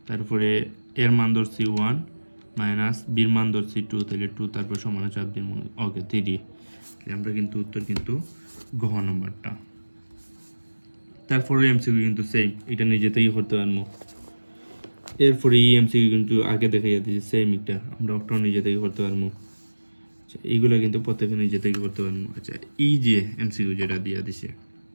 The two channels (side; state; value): both; inverted; correlation -1.00